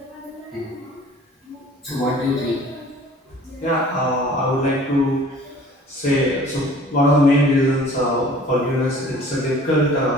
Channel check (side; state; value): both; normal; correlation 0.49